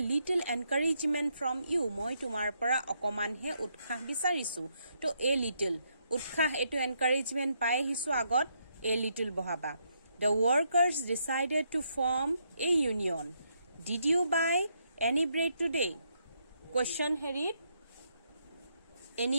little encouragement from you. মই তোমাৰ পৰা অকমানহে উৎসাহ বিচাৰিছো, তো এ লিটল. উৎসাহ এইটো এনকাৰেজমেণ্ট পাই আহিছো, আগত এ লিটল বহাবা. The workers decided to form a union. Did you buy any bread today? Question হেৰিত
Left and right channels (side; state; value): both; inverted; correlation -0.77